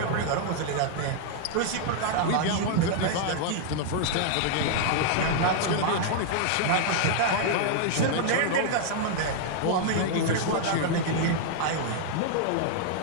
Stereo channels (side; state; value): both; different; correlation -0.01